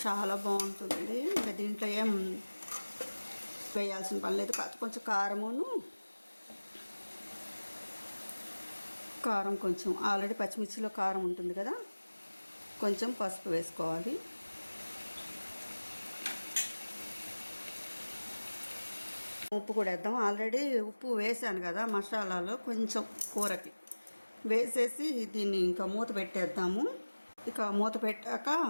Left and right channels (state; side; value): inverted; both; correlation -1.00